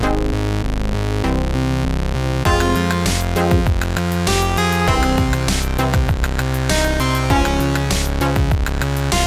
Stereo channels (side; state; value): both; identical; correlation 1.00